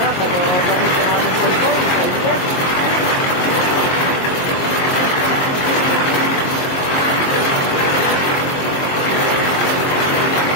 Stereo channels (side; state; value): right; late; 22 ms